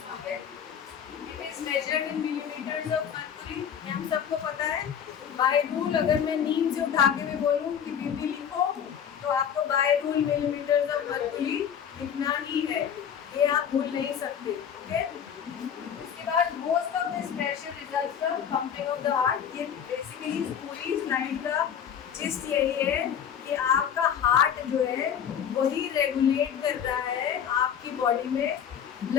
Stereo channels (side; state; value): right; quieter; 8.4 dB